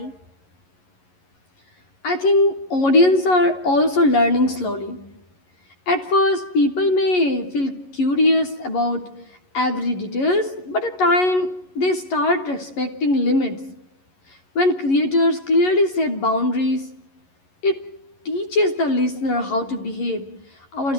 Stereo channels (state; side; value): late; right; 11 ms